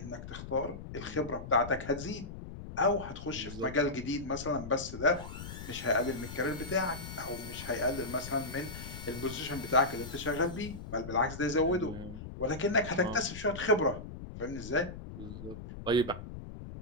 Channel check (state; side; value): noise; left; rumble, 10 dB below the sound